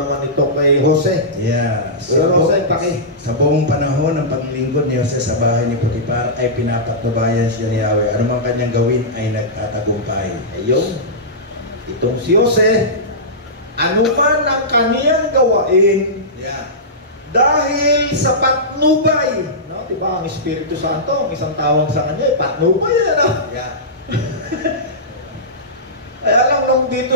ito kay Jose. Yeah. Pero Jose, sa buong panahon ng paglingkod ni Jose sa bahay ni Potiphar ay pinapatnubayan siya ni Yahweh. Ano man kanyang gawin ay nagtatagumpay. Ayun. Itong si Jose, ano man ang kaniyang gawain, Yeah. dahil sa patnubay, no? Diba ang Espiritu Santo, ang isang tawag sa kanya, patnubay yan, no? Yeah. Kaya lang nung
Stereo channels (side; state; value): both; normal; correlation -0.16